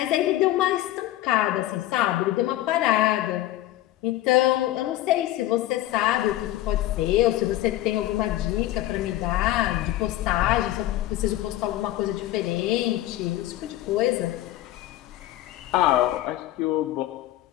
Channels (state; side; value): quieter; right; 15.0 dB